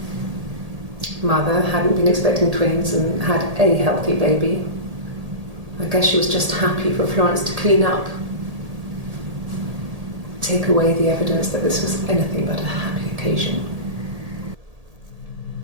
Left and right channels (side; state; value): left; late; 1.8 ms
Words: Mother hadn't been expecting twins and had a healthy baby. I guess she was just happy for Florence to clean up. Take away the evidence that this was anything but a happy occasion.